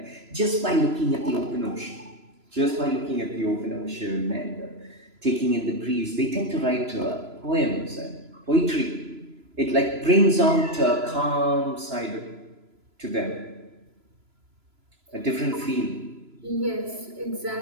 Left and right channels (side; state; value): left; late; 3.0 ms